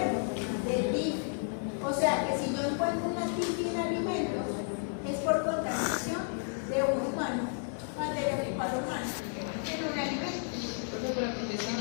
de TIFI. O sea que si yo encuentro una TIFI en alimentos, es por contaminación de un humano, materia fecal humana, en un alimento.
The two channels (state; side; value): silent; right; 56 dB below the other